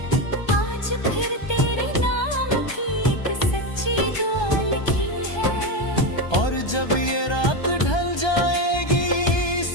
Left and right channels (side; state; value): right; late; 1.2 ms